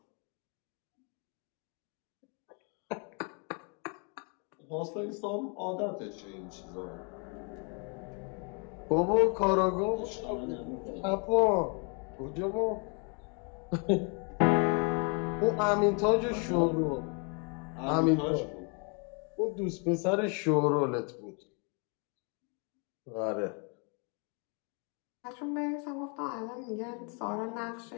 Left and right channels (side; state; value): right; quieter; 36.5 dB